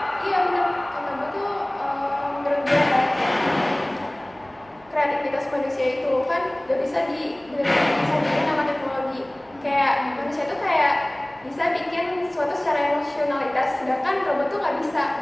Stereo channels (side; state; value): right; noise; hum, 29 dB below the sound